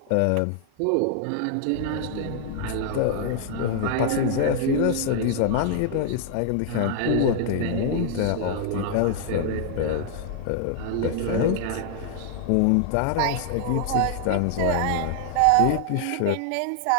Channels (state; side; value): different; both; correlation 0.00